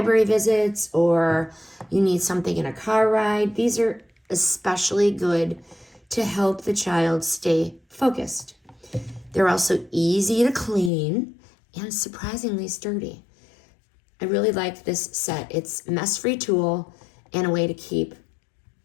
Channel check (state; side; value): drops out; right; at 10.9 s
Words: visits or you need something in a car ride, these are especially good to help the child stay focused. They're also easy to clean and surprisingly sturdy. I really like this set. It's a mess-free tool and a way to keep